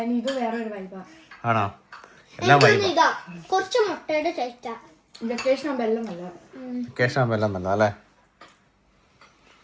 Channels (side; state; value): both; identical; correlation 1.00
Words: ഇത് വേറെ ഒരു വൈബാ. ആണോ? എല്ലാം വൈബ്. ഇതാ കുറച്ച് മുട്ടയുടെ ടേസ്റ്റാ. വെക്കേഷൻ ആകുമ്പോ എല്ലാം നല്ല. വെക്കേഷൻ ആകുമ്പോ എല്ലാം നല്ല അല്ലേ?